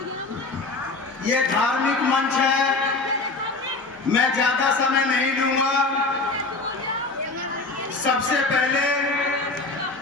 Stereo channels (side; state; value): right; quieter; 3.5 dB